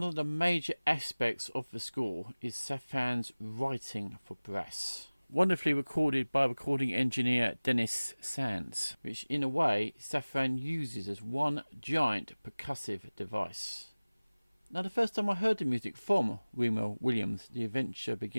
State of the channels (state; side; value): inverted; both; correlation -1.00